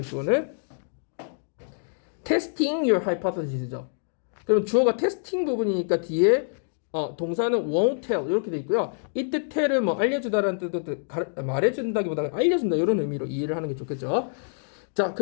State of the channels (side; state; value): right; silent; digital silence